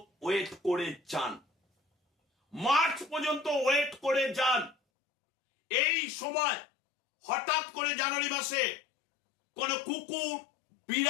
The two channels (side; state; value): right; drops out; at 4.8 s